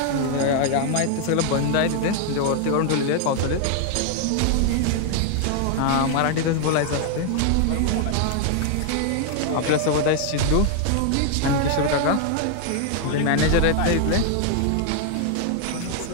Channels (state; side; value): different; both; correlation 0.00